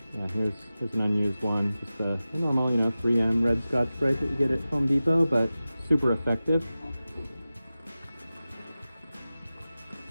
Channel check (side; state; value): both; inverted; correlation -0.95